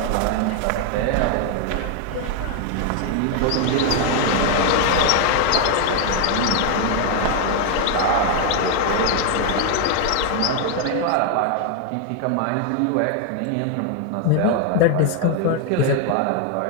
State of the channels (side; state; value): both; different; correlation 0.00